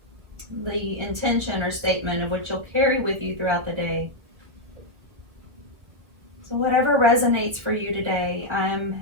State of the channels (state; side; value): late; left; 1.2 ms